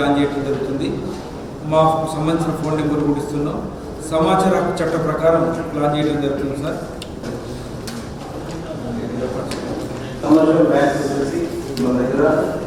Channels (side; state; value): both; identical; correlation 1.00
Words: చేయడం జరుగుతుంది. మాకు సంబంధించిన ఫోన్ నెంబర్ కూడా ఇస్తున్నాం. సమాచార హక్కు చట్ట ప్రకారం ప్లాన్ చేయడం జరుగుతుంది సార్.